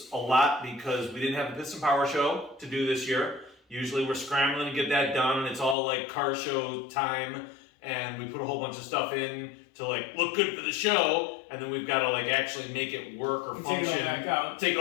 a lot because we didn't have the Piston Power Show to do this year. Usually we're scrambling to get that done, and it's all like car show time, and we put a whole bunch of stuff in to like look good for the show, and then we've got to like actually make it work or function. Take it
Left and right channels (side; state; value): right; drops out; at 5.8 s